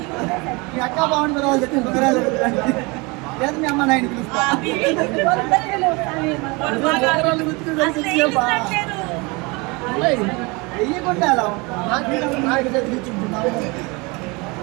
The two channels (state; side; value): quieter; left; 26.9 dB